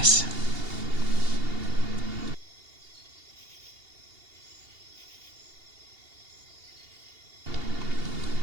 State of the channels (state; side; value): late; left; 2.8 ms